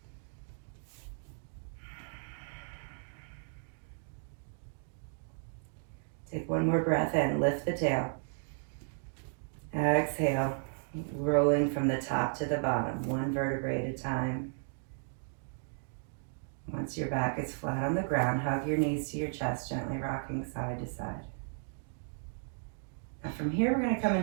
Take 1 more breath in, lift the tail. Exhale, rolling from the top to the bottom, 1 vertebrae at a time. Once your back is flat on the ground, hug your knees to your chest, gently rocking side to side. Now from here, we're going to come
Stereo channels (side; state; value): left; silent; digital silence